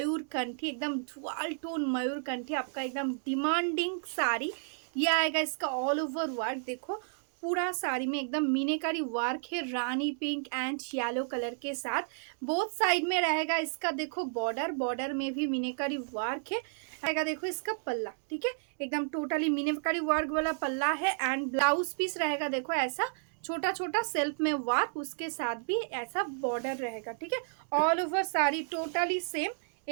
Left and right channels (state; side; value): silent; left; digital silence